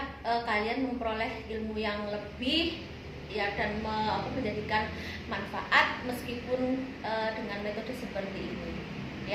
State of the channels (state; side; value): identical; both; correlation 1.00